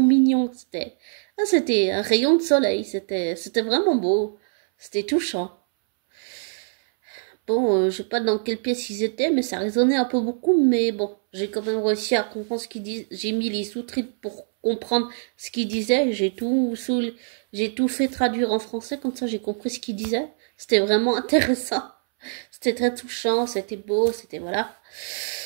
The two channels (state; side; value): silent; left; 62 dB below the other